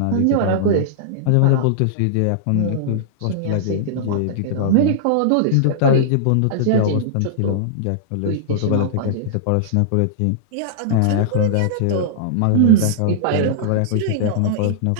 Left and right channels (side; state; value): both; different; correlation -0.02